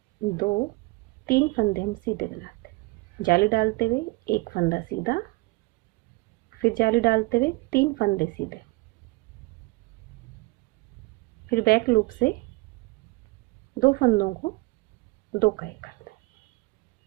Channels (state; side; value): quieter; left; 23.9 dB